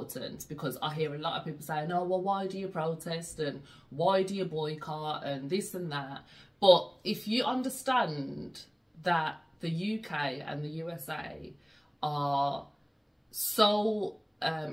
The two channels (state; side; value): identical; both; correlation 1.00